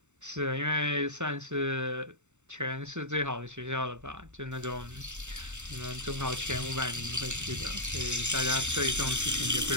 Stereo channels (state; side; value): late; left; 0.84 ms